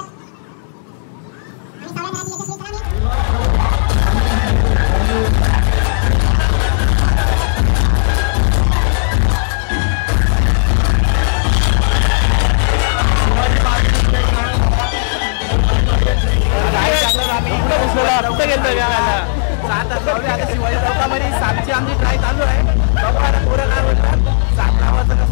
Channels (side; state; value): right; silent; digital silence